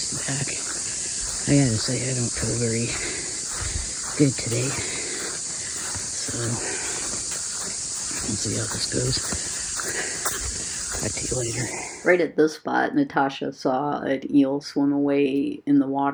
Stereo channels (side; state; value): both; identical; correlation 1.00